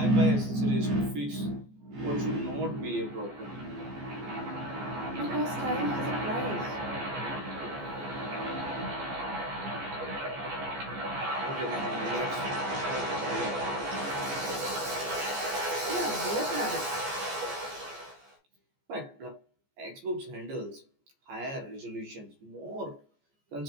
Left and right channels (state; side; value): late; left; 14 ms